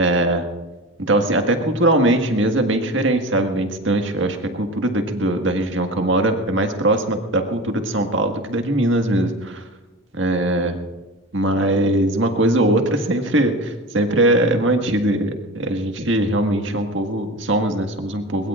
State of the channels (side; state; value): both; normal; correlation 0.31